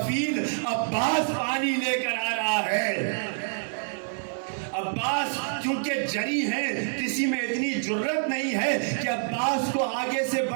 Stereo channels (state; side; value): silent; left; digital silence